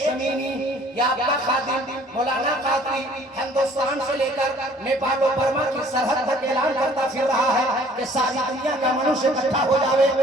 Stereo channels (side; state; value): both; normal; correlation 0.55